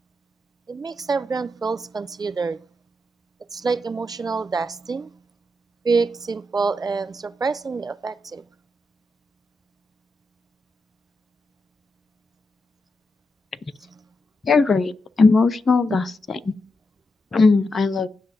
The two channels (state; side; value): normal; both; correlation 0.86